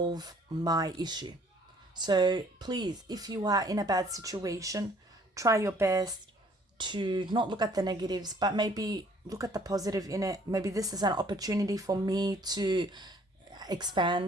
my issue. So please, if you are in a bad situation, try your best to not look at the negatives, but maybe look at the positive in it. Maybe this is an opportunity for me to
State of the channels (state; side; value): normal; both; correlation 0.59